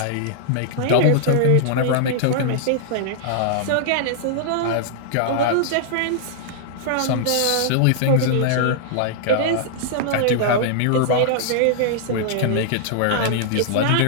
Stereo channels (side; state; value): both; different; correlation -0.01